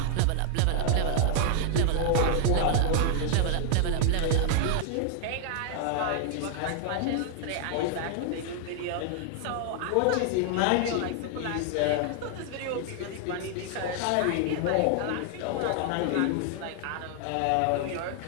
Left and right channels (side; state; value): both; different; correlation 0.00